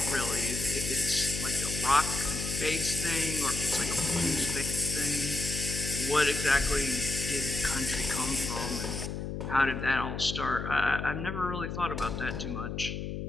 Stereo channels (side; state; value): left; noise; hum, 5 dB below the sound